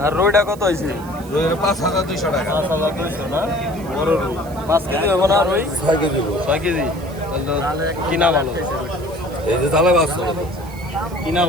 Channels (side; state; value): right; noise; hiss, 22 dB below the sound